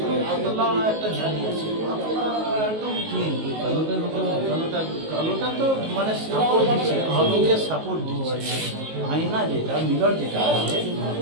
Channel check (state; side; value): late; left; 19 ms